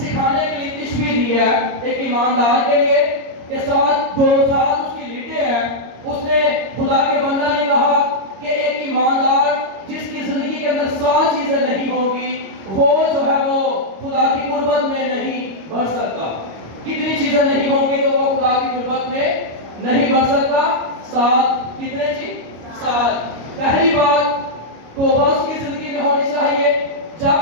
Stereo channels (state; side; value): late; left; 25 ms